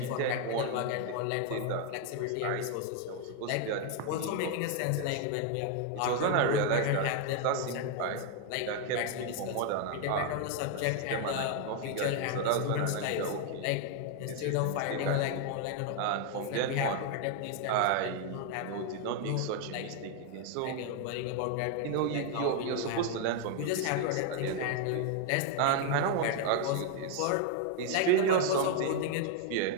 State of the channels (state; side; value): different; both; correlation 0.01